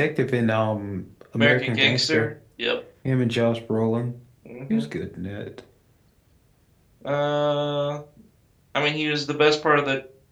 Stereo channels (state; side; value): identical; both; correlation 1.00